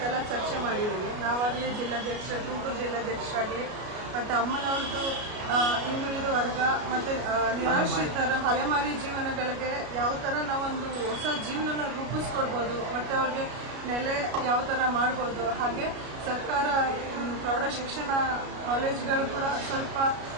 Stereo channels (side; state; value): left; late; 33 ms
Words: ಚರ್ಚೆ ಮಾಡಿದ್ದೀವಿ. ನಾವಾಗಲಿ ತುಮಕೂರು ಜಿಲ್ಲಾಧ್ಯಕ್ಷರಾಗಲಿ ಮತ್ತು ಅಮ್ಮನವ್ರದ್ದು ಹಿಂದುಳಿದ ವರ್ಗ ಮತ್ತು ನಿರಾಶ್ರಿತರ ಅಲೆಮಾರಿ ಜೀವನಗಳಿಗೆ ಯಾವ ಥರ ನಾವೊಂದು ಹೊಸ ಜೀವನನ ರೂಪಿಸ್ಕೊಡ್ಬೋದು ಮತ್ತು ಅವ್ರಿಗೆ ನೆಲೆ ಯಾವ ಥರ ಮಾಡ್ಬೋದು. ಹಾಗೆ ಸರ್ಕಾರ ಪ್ರೌಢ ಶಿಕ್ಷಣ ಕಾಲೇಜುಗಳು ಕೂಡ ಸ್ವಲ್ಪ